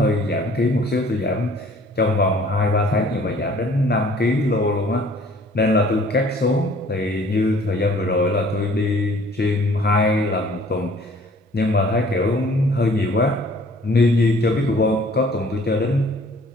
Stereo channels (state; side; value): normal; both; correlation 0.55